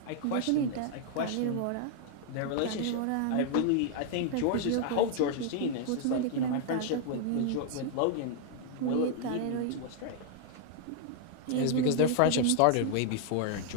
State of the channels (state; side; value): different; both; correlation 0.00